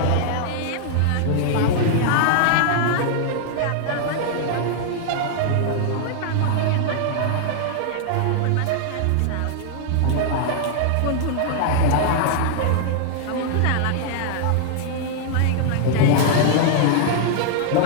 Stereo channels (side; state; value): both; different; correlation -0.01